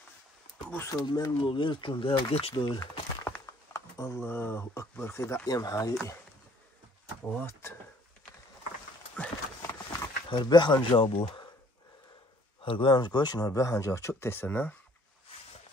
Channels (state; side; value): normal; both; correlation 0.59